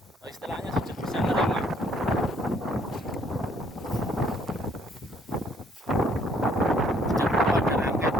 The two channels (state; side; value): normal; both; correlation 0.64